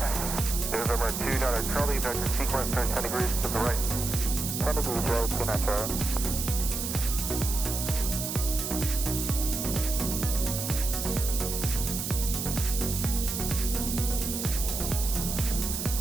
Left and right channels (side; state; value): right; noise; hiss, 4 dB below the sound